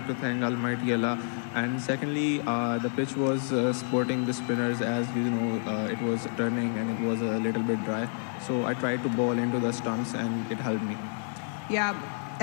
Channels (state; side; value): silent; right; digital silence